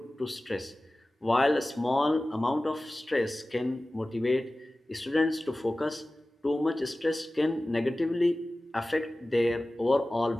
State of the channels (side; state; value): both; normal; correlation 0.97